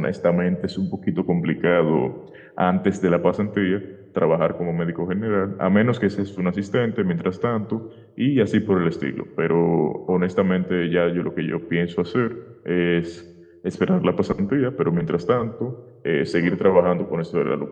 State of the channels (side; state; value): both; identical; correlation 1.00